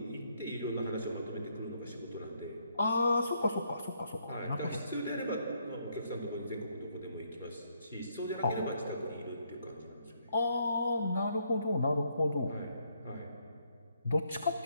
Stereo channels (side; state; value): both; inverted; correlation -0.73